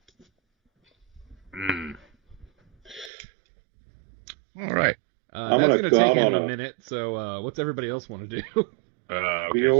All right. I'm That's gonna gonna go take out him on a a- minute. So, what's everybody else want to do? Okay,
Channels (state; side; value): drops out; left; at 3.1 s